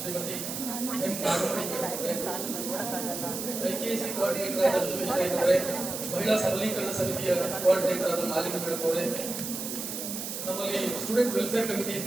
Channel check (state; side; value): noise; right; hiss, 5 dB below the sound